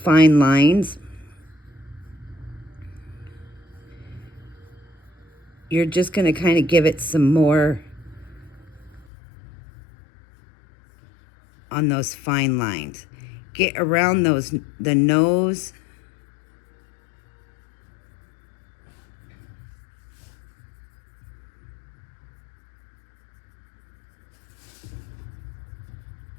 lines. You're just going to kind of give it some more on those fine lines. Get around the nose.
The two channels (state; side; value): drops out; right; at 9.1 s